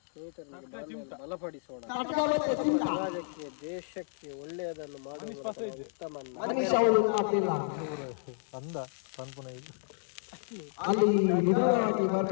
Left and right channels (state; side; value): silent; right; 57 dB below the other